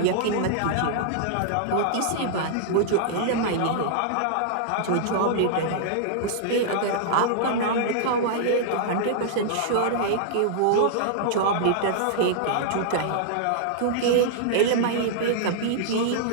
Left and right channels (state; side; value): different; both; correlation -0.02